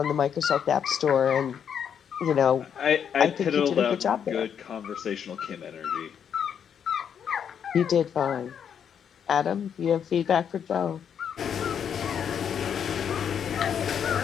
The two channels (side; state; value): right; quieter; 8.1 dB